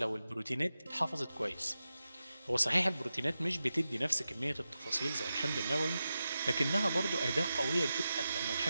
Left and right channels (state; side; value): inverted; both; correlation -0.92